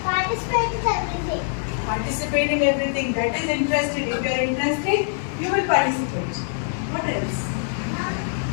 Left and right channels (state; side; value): silent; right; digital silence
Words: Participate in everything. Participate in everything. That is interested. If you are interested, you will participate. What else?